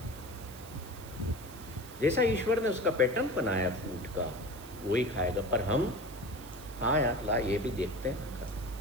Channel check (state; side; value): noise; right; hiss, 18 dB below the sound